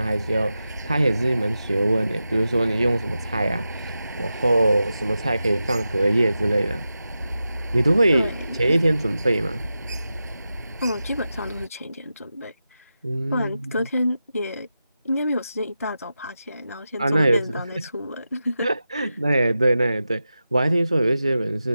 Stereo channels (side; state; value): both; inverted; correlation -0.91